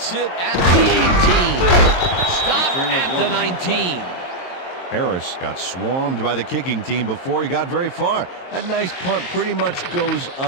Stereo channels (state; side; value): late; right; 22 ms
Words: it at the 18. Stopped at the 19. Harris got swarmed by the kicking team before he got very far. That nice punt pretty much goes